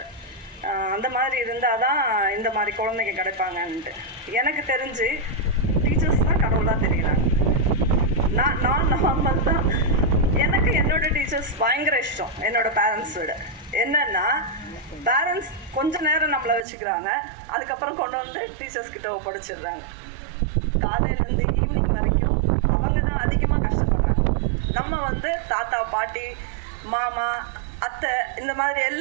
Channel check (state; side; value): drops out; left; at 16.7 s